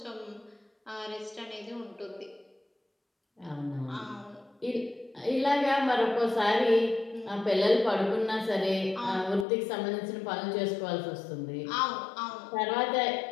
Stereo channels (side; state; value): right; drops out; at 9.5 s